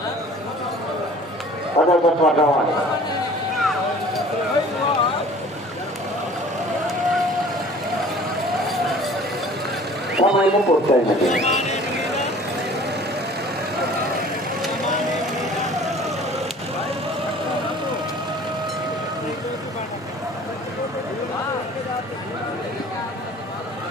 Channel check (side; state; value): both; normal; correlation 0.48